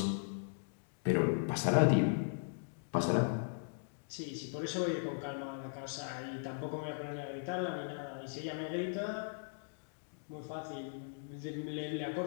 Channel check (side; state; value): right; silent; digital silence